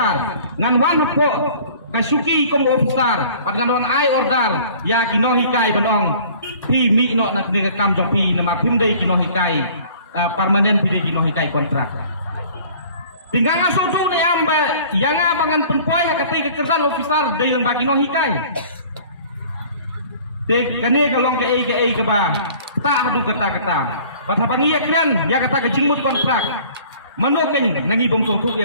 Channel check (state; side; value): inverted; both; correlation -0.50